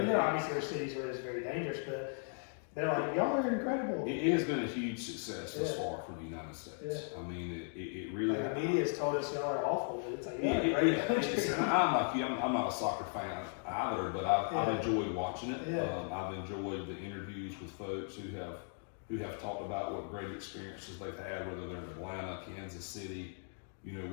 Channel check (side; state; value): right; silent; 53 dB below the other